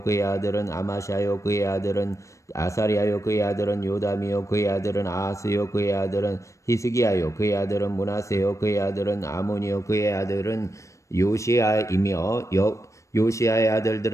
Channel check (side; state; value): right; late; 0.15 ms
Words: 그의 아들은 아마샤요 그의 아들은 아사리야요 그의 아들은 요담이요 그의 아들은 아하스요 그의 아들은 히스기야요 그의 아들은 므낫세요 그의 아들은 아몬이요 그의 아들은 요시야이며 요시야의